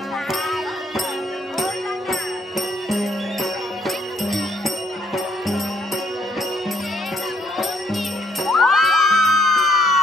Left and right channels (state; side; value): normal; both; correlation 0.67